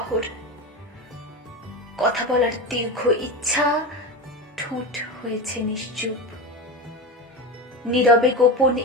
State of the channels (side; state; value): both; normal; correlation 0.23